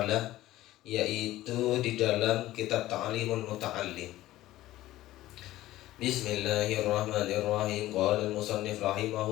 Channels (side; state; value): right; quieter; 15.7 dB